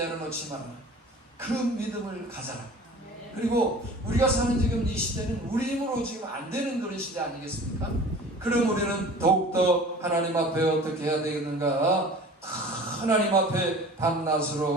마라. 그 믿음을 가져라. 그리고 우리가 사는 지금 이 시대는 우리 힘으로 지금 안 되는 그런 시대 아니겠습니까? 그럼 우리는 더욱더 하나님 앞에 어떻게 해야 되겠는가? 하나님 앞에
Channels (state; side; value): normal; both; correlation 0.43